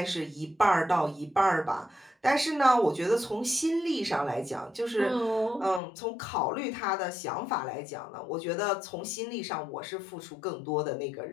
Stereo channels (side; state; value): right; drops out; at 5.8 s